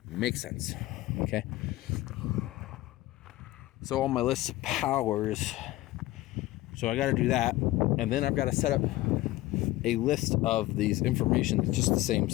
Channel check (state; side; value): quieter; right; 17.2 dB